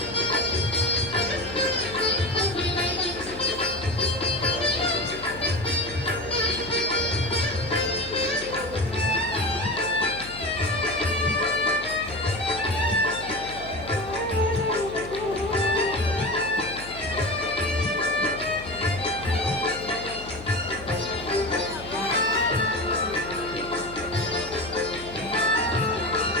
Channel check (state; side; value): noise; left; hum, 14 dB below the sound